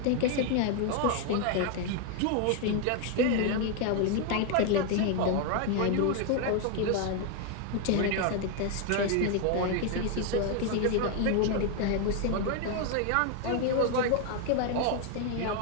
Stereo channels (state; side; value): different; both; correlation 0.00